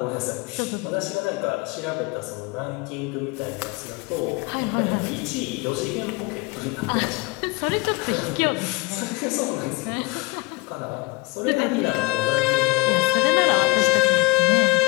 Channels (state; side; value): quieter; right; 23.3 dB